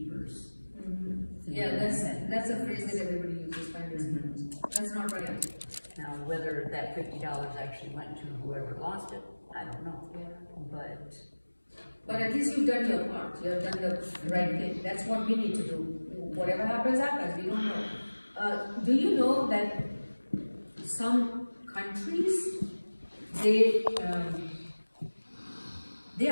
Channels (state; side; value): inverted; both; correlation -1.00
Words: Yeah, that's a phrase that everybody uses, finders keepers. That's not right. Now, whether that $50 actually went to whoever lost it, I don't know. Yeah. But at least you've done your part. You've done the right thing. That's what we need to do. Whatever happens, happens. We don't know. Do you know that some countries, they